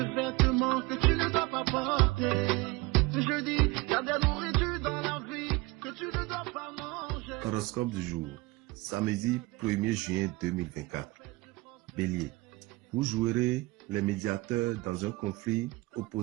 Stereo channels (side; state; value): left; quieter; 22.5 dB